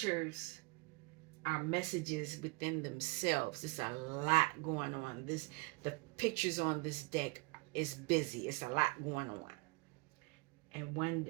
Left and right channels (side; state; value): left; quieter; 28.4 dB